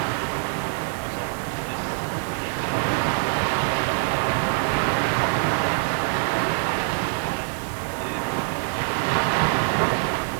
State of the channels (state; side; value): silent; left; 60 dB below the other